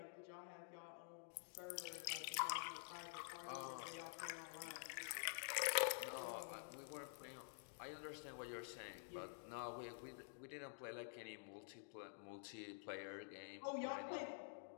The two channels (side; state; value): right; silent; digital silence